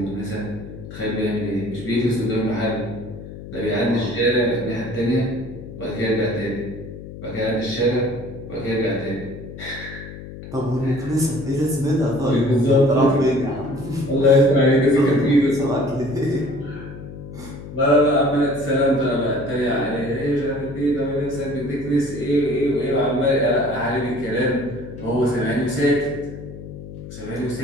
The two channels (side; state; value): left; noise; hum, 13 dB below the sound